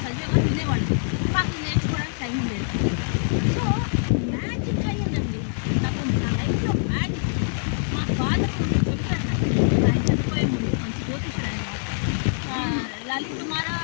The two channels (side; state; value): right; silent; digital silence